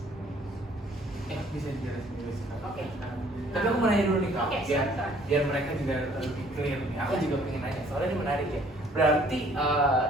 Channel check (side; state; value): both; normal; correlation 0.59